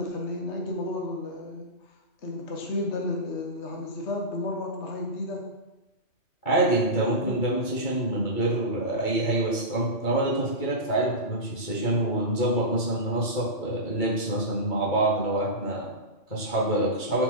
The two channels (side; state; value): right; late; 2.3 ms